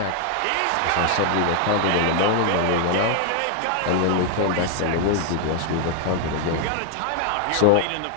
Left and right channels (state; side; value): different; both; correlation 0.00